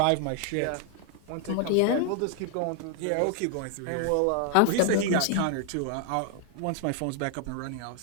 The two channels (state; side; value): different; both; correlation 0.00